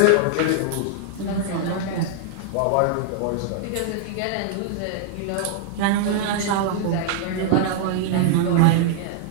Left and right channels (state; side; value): different; both; correlation -0.01